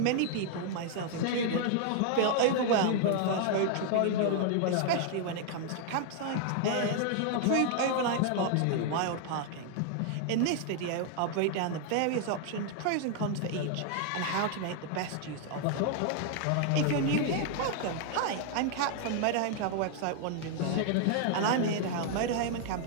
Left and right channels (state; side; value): different; both; correlation 0.00